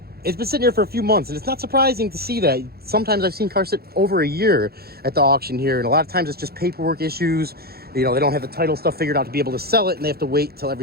It's been sitting here for a few months, and it's not surprising to see that. Sometimes I've seen cars sit over a year at the auction here, and a lot of times it's just paperwork issues. You know, they don't have the title stuff figured out to be able to sell it, and they have to wait till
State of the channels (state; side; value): late; left; 0.45 ms